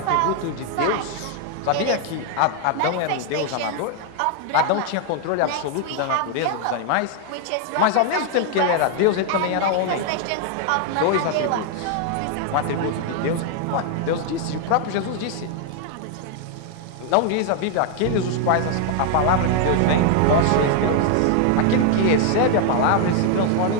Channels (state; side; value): different; both; correlation 0.00